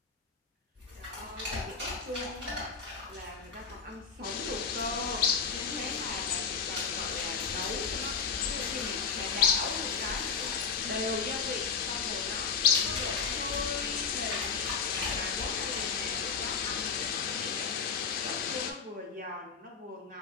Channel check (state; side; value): quieter; right; 5.9 dB